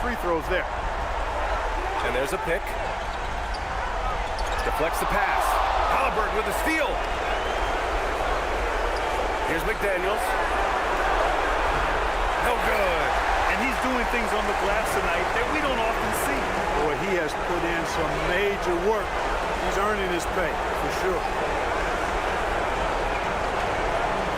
throws there. And there's a pick. Deflects the pass. Halliburton with a steal. Here's McDaniels. No good. And he's doing things on the glass tonight that we don't often see. Boy, he has put in some major work. He's earning his pay, for sure.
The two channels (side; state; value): both; identical; correlation 1.00